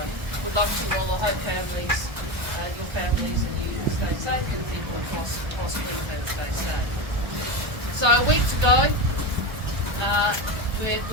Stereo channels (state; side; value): late; left; 1.2 ms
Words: we'd love to all the Hope families, your families, and you stay safe, and people across Queensland stay safe. So a week to go. We're